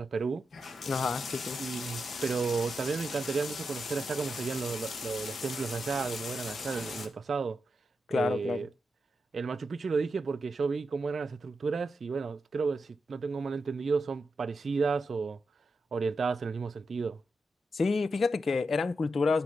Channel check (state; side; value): normal; both; correlation 0.87